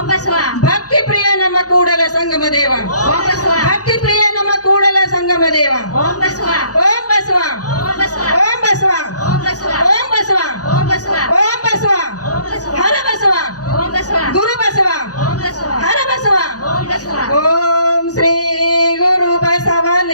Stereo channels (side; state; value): right; late; 0.67 ms